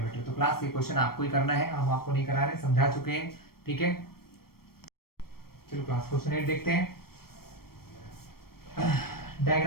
तो क्लास ये क्वेश्चन आपको ही करना है, हम आपको नहीं करा रहे, समझा चुके हैं। ठीक है, चलो क्लास क्वेश्चन 8 देखते हैं।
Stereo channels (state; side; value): late; right; 0.94 ms